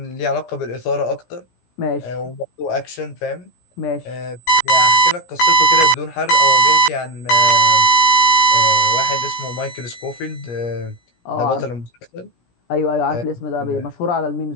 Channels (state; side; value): late; right; 17 ms